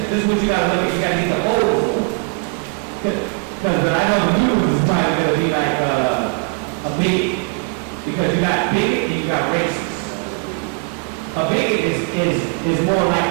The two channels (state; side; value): quieter; left; 31.4 dB